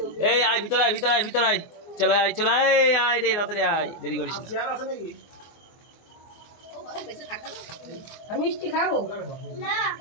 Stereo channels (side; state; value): right; late; 24 ms